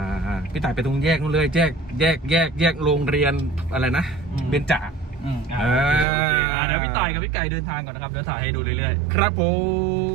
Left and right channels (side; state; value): left; drops out; at 6.1 s